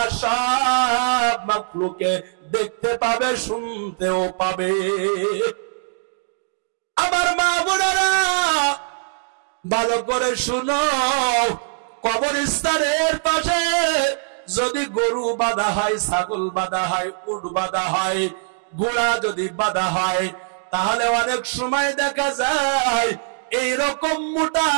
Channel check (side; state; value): left; silent; digital silence